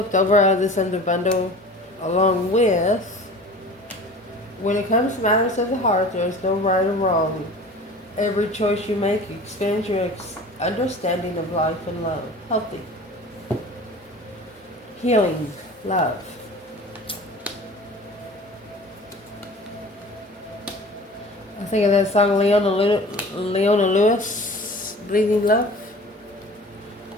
over out of this under bundle. Along with, when it comes to matters of the heart, there's no right or wrong. Every choice you make expands your understanding of life and love. Healthy. Healing. Love. I think of that song Leona Lewis, Bleeding Love.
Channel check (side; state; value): both; normal; correlation 0.41